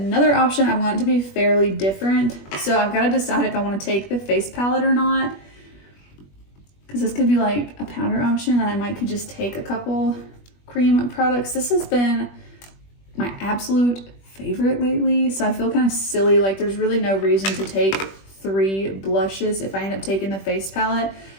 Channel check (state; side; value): late; right; 21 ms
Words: option, I want it to be fairly different. So I've got to decide if I want to take the face palette or not, because this could be like a powder option and I might could just take a couple cream products. This has been my absolute favorite lately, so I feel kind of silly, like there's really no reason to take 3 blushes if I end up taking the face palette.